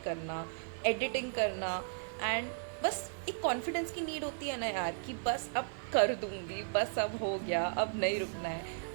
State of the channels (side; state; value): left; silent; 54 dB below the other